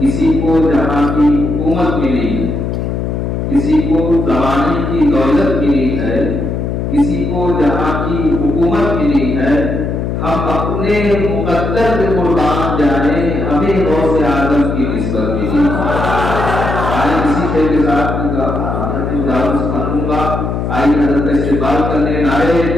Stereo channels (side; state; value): left; noise; hum, 2 dB below the sound